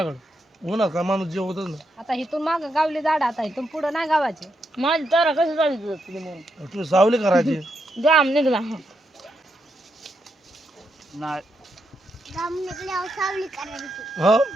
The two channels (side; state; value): both; normal; correlation 0.82